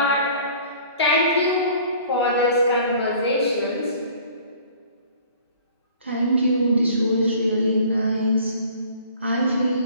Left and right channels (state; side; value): inverted; both; correlation -0.50